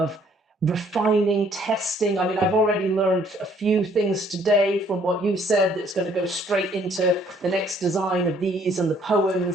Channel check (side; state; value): both; normal; correlation 0.62